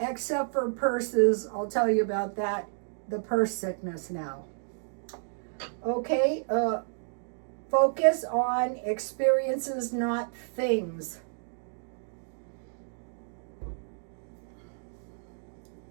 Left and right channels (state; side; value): silent; left; digital silence